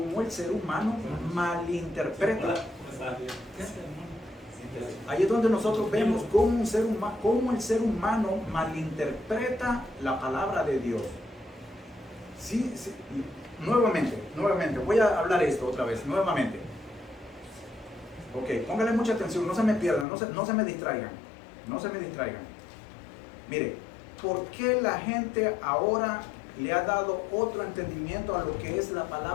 el ser humano malinterpreta. Ahí es donde nosotros vemos cómo el ser humano malinterpreta la palabra de Dios. Sí, sí. Nuevamente, voy a hablar esto otra vez, nuevamente. Ok, póngale mucha atención, no se me pierdan, no se me distraigan. No se me distraigan. Mire, ¿por qué la gente ahora le ha dado otro entendimiento a lo que es la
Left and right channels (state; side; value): drops out; right; at 20.1 s